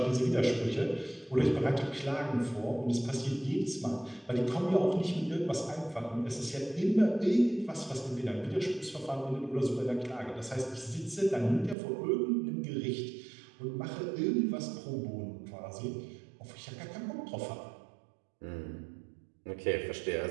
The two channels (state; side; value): drops out; left; at 11.8 s